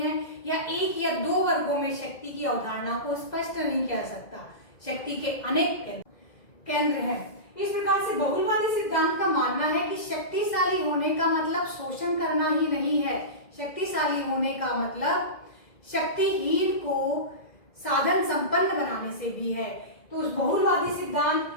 है, या एक या दो वर्गों में शक्ति की अवधारणा को स्पष्ट नहीं किया सकता, शक्ति के अनेक केंद्र हैं। इस प्रकार से बहुलवादी सिद्धांत का मानना है कि शक्तिशाली होने का मतलब शोषण करना ही नहीं है, शक्तिशाली होने का मतलब शक्तिहीन को साधन संपन्न बनाने से भी है। तो उस बहुलवादी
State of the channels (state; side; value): late; right; 2.1 ms